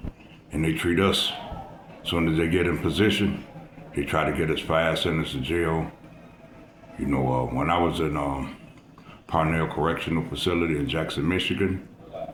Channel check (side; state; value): both; identical; correlation 1.00